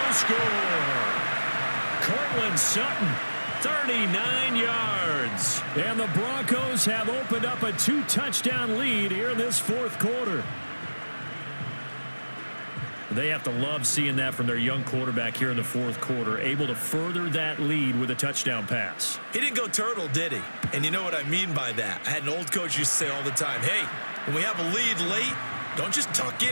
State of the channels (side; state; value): both; inverted; correlation -1.00